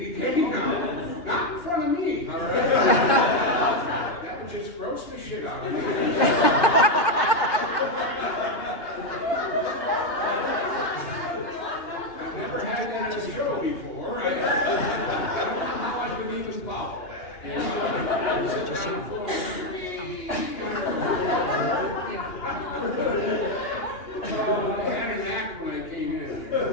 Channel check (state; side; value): late; right; 2.9 ms